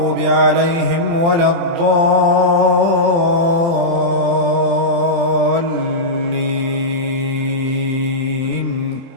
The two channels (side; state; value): left; late; 23 ms